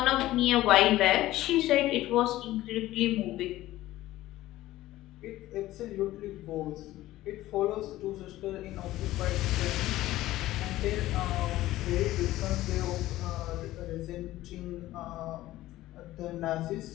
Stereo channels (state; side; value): quieter; right; 15.8 dB